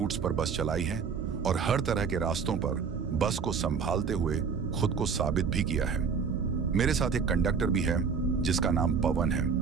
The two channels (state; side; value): quieter; left; 5.9 dB